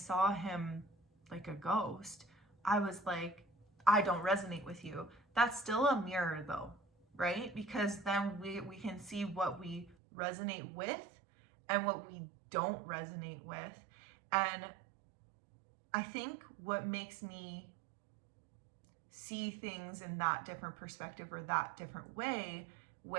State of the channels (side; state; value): left; drops out; at 10.0 s